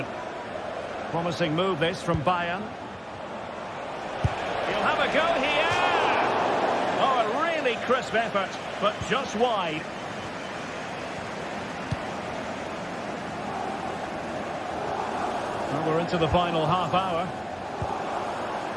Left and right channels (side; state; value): both; identical; correlation 1.00